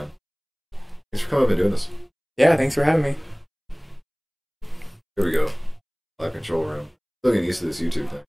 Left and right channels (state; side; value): identical; both; correlation 1.00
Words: Thanks for coming up and doing this. Yeah, thanks for having me. Here we go. Live control room. Still getting used to this YouTube thing.